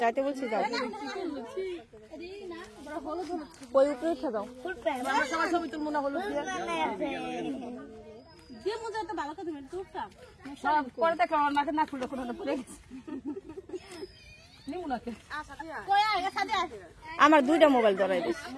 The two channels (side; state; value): both; identical; correlation 1.00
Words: যাইতে বলছি যাও, ওই উপরে উঠে যাও। ছবি তুলবো না হলুদ দিয়ে। পরে দেখলাম আমার মাকে না ফুল পড়ে গেছে। আমার 2টা মোবাইল ধরাই দিস।